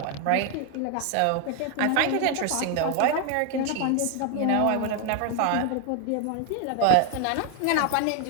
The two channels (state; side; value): different; both; correlation 0.01